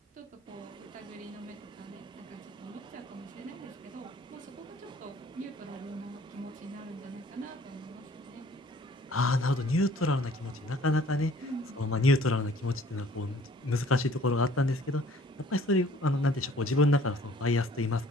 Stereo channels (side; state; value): both; normal; correlation 0.54